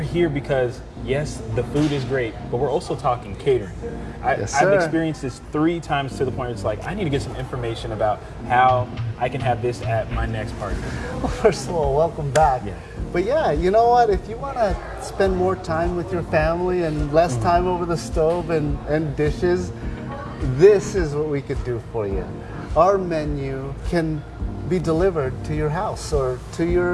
because, yes, the food is great, but we're also talking catering. I've experienced this 3 times to the point where it's like, I need to get some information about how I can have this at my next party. Well, first of all, welcome back. Yeah. But yeah, you know what? If you want to spend more time with your family and less time over the stove and dishes, this is what we could do for you. Our menu can be delivered to your house or to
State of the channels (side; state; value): both; identical; correlation 1.00